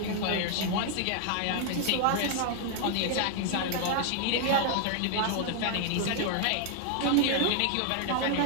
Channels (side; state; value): both; different; correlation 0.00